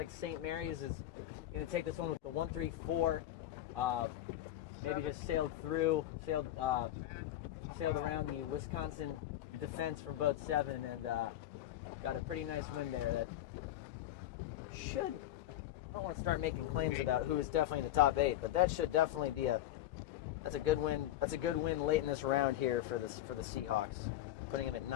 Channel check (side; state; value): right; quieter; 13.2 dB